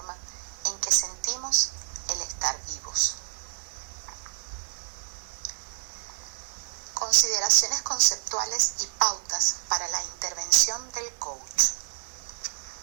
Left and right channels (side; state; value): left; silent; digital silence